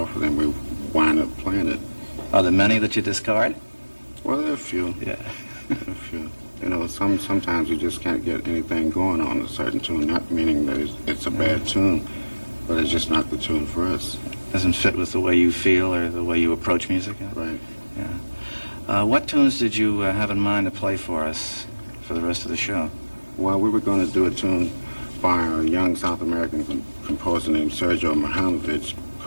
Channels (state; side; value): inverted; both; correlation -1.00